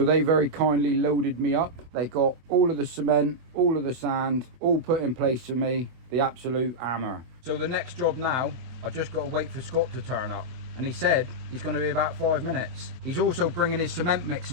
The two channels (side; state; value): left; late; 24 ms